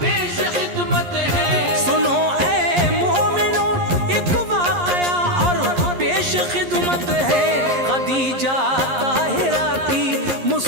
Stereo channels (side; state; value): left; late; 11 ms